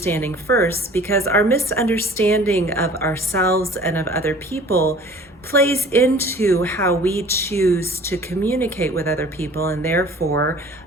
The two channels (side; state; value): both; normal; correlation 0.48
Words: first because our misunderstanding of ourselves and of other people plays into how we choose to communicate with other people and therefore